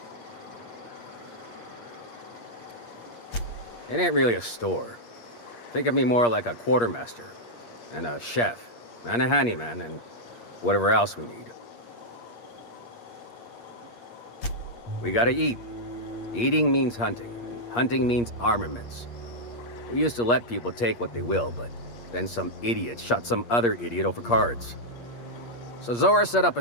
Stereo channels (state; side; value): late; right; 8.5 ms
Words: It ain't really a store. Think of me more like a quartermaster, and a chef, and a handyman, and whatever else we need. We gotta eat. Eating means hunting. Hunting means armaments. We used to let people take what they will, but then some idiot shot some other idiot over cards. So Zora set up a